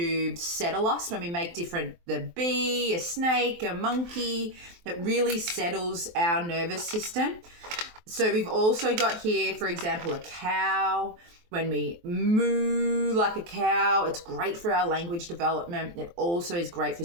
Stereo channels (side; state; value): left; late; 23 ms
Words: settle us when we make the bee, a snake, a monkey. It really settles our nervous system. So we've also got here, for example, a cow. When we moo like a cow, it's great for our language development. It also is great for